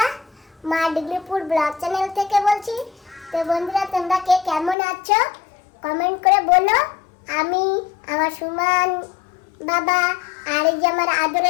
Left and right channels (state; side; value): drops out; right; at 4.8 s